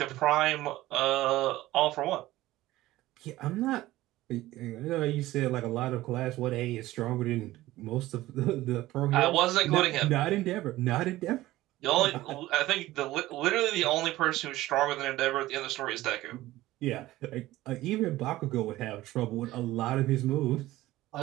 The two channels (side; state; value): left; quieter; 16.7 dB